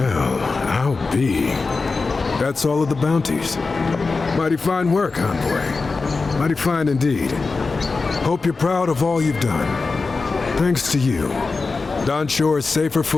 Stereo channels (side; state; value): right; quieter; 4.1 dB